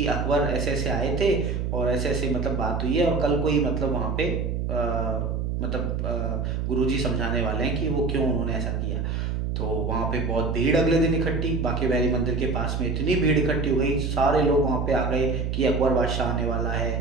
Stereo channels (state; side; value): noise; right; hum, 1 dB below the sound